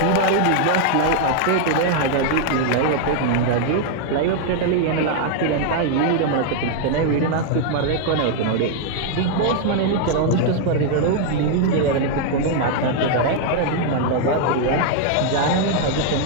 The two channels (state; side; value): different; both; correlation 0.00